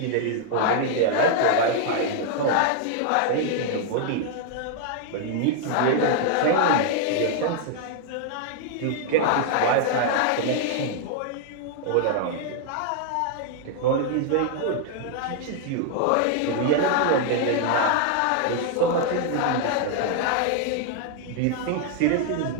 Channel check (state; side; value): different; both; correlation 0.00